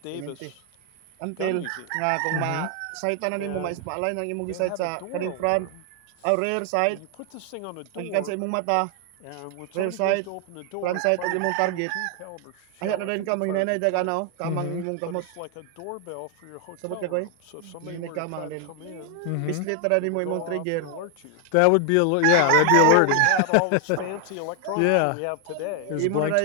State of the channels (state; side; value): different; both; correlation 0.00